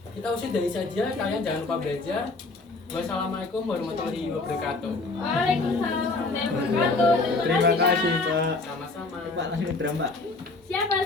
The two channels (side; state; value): right; quieter; 3.5 dB